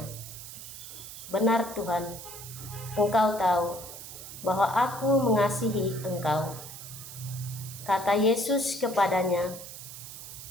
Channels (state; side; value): noise; right; hiss, 12 dB below the sound